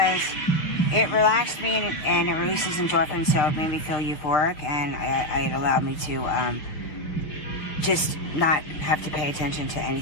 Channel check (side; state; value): right; late; 6.6 ms